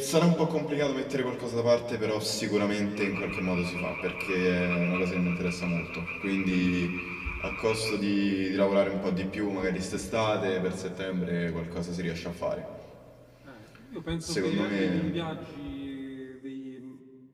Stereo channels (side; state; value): both; identical; correlation 1.00